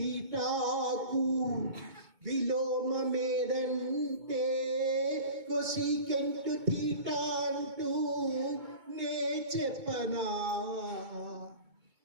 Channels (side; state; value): left; late; 2.2 ms